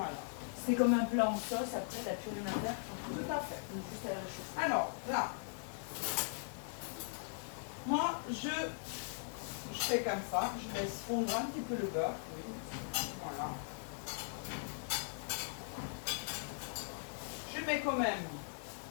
C'est comme un plat en sauce, après, t'as plus rien à faire. Tout à fait. Donc, juste à la réchauffer. Alors, là, moi, je fais comme ça. Je laisse fondre un petit peu le beurre. Oui. Voilà. Je mets quand même.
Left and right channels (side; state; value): right; silent; digital silence